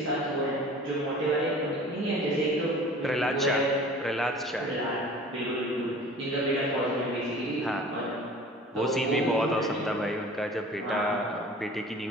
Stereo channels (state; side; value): normal; both; correlation 0.44